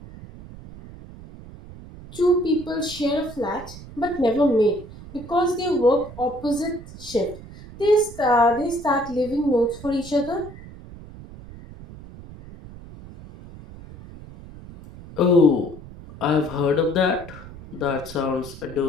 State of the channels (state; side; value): noise; right; rumble, 16 dB below the sound